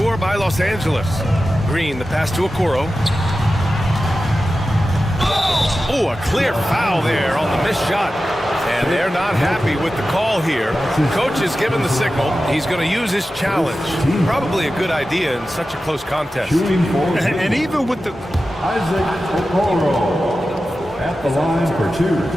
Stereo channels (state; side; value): normal; both; correlation 0.93